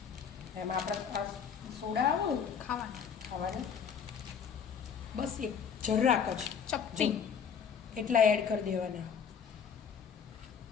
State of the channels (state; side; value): quieter; right; 7.1 dB